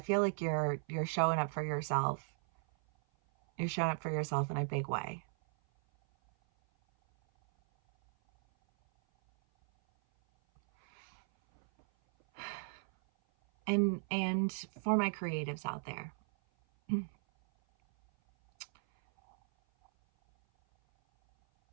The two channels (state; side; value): silent; left; 54 dB below the other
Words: feel like you're showing up for yourself. You're showing up for yourself in a big way. And for my creatives out there,